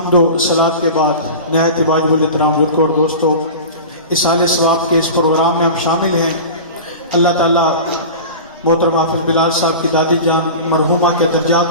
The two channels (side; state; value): both; inverted; correlation -0.33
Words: و صلات کے بعد نہایت واجب الاحترام بزرگوں اور دوستوں، اصالِ ثواب کے اس پروگرام میں ہم شامل ہیں. اللہ تعالیٰ محترم حافظ بلال صاحب کی دادی جان مرحومہ کے